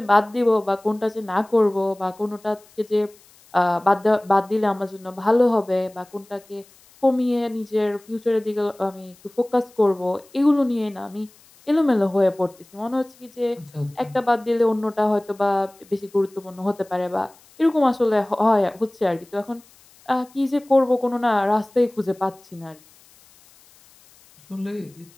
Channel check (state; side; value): noise; left; hiss, 28 dB below the sound